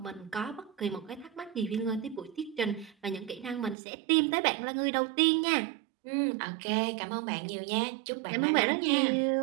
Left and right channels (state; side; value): drops out; left; at 3.8 s